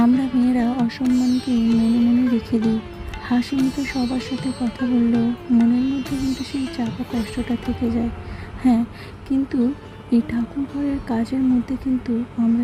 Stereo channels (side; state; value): both; identical; correlation 1.00